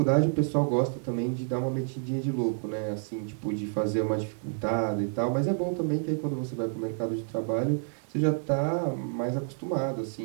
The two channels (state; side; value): silent; left; 59 dB below the other